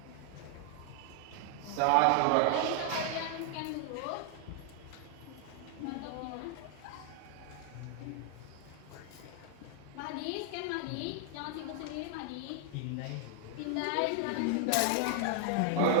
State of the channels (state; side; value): different; both; correlation 0.00